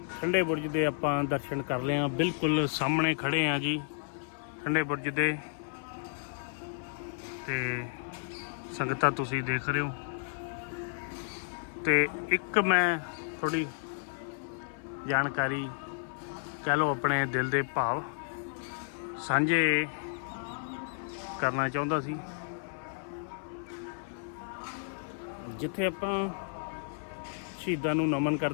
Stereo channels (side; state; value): right; silent; 56 dB below the other